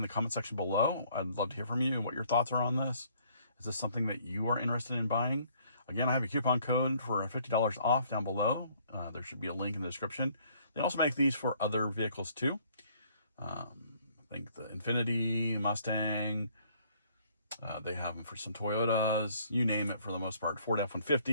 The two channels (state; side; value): inverted; both; correlation -0.62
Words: the comment section below. I'd love to hear from you and what your thoughts are on this. Is this something that you are interested in buying? Again, I have a coupon code for $50 off down below. There should be a link in the description. They also make these for other vehicles too. I think the Infiniti, Mustang, they have them for some Toyotas, you name it for the most part, Ford